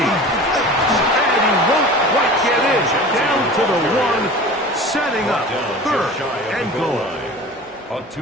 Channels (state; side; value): normal; both; correlation 0.38